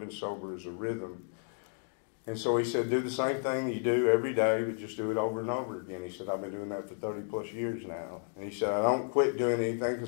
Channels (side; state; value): right; silent; 56 dB below the other